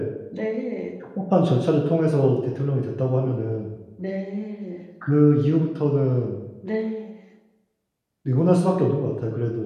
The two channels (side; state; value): both; identical; correlation 1.00